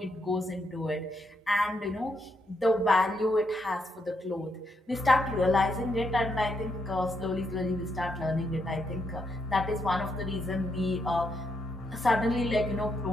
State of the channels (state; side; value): normal; both; correlation 0.78